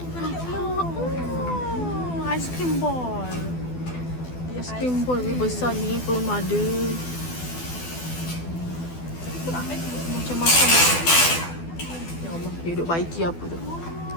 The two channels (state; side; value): late; right; 12 ms